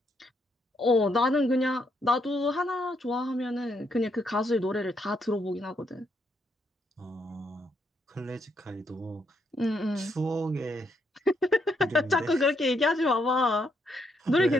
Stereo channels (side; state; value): both; normal; correlation 0.76